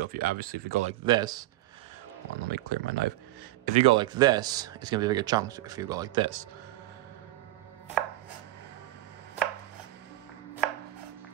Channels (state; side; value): quieter; left; 16.6 dB